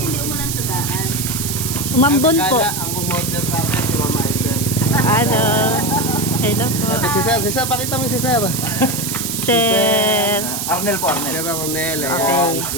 umulan sa daan. Umambon po. Ang umorder sa atin si Mama Isel. Ano? Hello po. Si Sir, pakita mo si Sir. Sir. Arnel po, Arnel. Sir Ronel. Okay.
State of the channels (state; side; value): noise; right; hiss, 3 dB below the sound